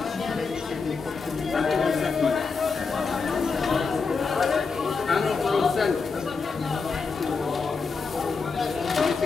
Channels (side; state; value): right; quieter; 4.8 dB